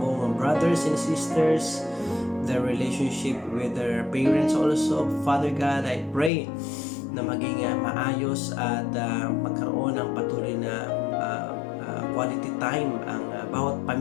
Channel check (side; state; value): right; drops out; at 6.3 s